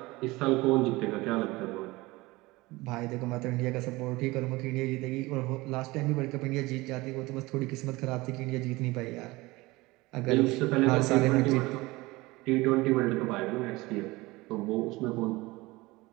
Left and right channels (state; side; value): quieter; left; 21.3 dB